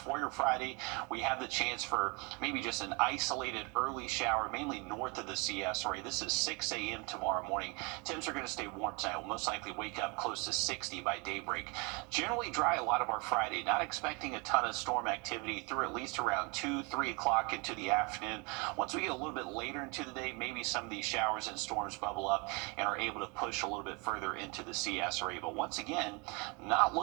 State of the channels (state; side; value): quieter; left; 29.9 dB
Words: your Friday, we have the chance for maybe just an isolated early shower, mainly north of the CS area. This is 6 a.m. tomorrow morning. Temps are going to stay warm tonight. We'll most likely wake up close to 60 by daybreak. Generally dry a lot of our Friday. Not expecting a ton of storm activity through at least around 2, 3 o'clock into the afternoon. Once we get a little bit later into the day, maybe some of these showers and storms bubble up and are able to push a little bit further into the CS area. But once again, not